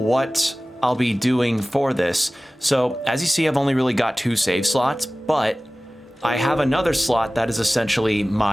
I'll be doing for this, so as you see, I've only really got 2 save slots, but I have another slot that is essentially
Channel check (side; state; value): both; normal; correlation 0.97